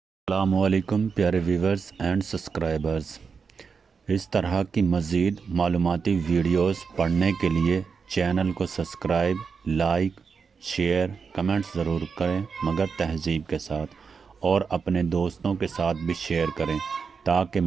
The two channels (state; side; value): quieter; left; 5.6 dB